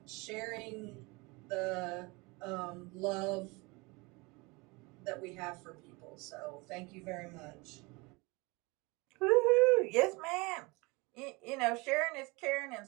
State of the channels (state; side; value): quieter; left; 25.8 dB